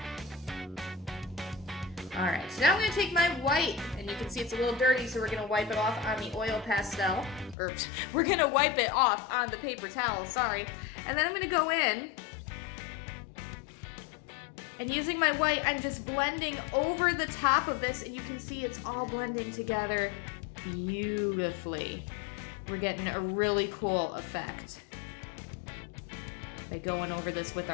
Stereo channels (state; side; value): drops out; right; at 7.6 s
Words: Alright, so now I'm going to take my white, and you can see it's a little dirty, so we're going to wipe it off on the oil pastel. Or, we're going to wipe it off on the paper towel, sorry. And then I'm going to go in, and using my white, I'm just blending over the top of this, and you can see it's all blending together beautifully. We're getting a really cool effect by going over this with